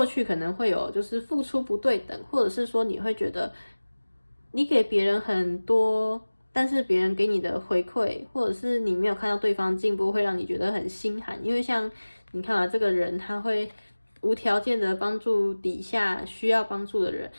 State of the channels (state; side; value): inverted; both; correlation -1.00